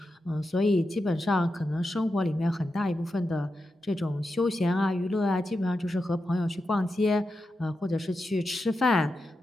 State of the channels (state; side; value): normal; both; correlation 0.89